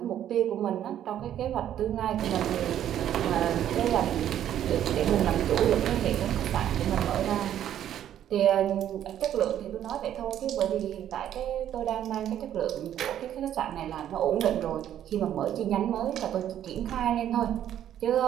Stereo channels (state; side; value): quieter; left; 10.9 dB